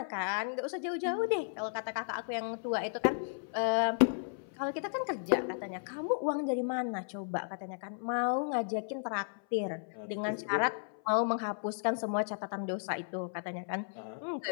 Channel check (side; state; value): right; silent; 55 dB below the other